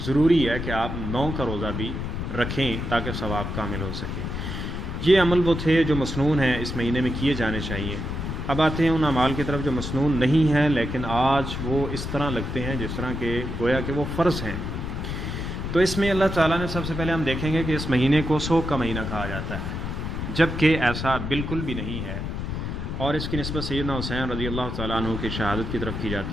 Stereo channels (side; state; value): left; noise; rumble, 4 dB below the sound